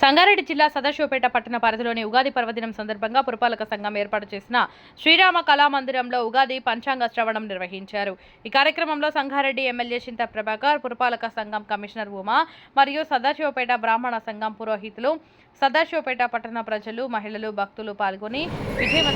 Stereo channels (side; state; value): both; identical; correlation 1.00